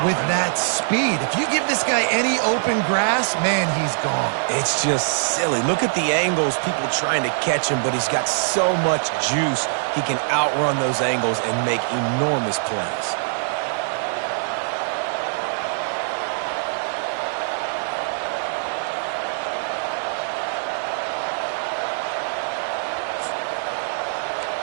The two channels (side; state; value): left; silent; digital silence